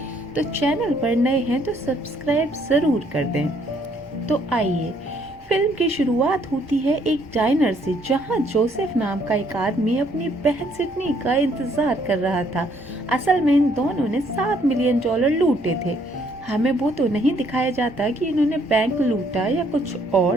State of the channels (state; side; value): normal; both; correlation 0.66